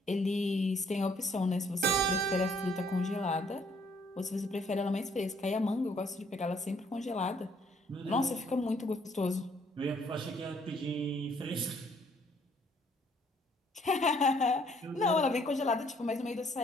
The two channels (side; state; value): both; normal; correlation 0.64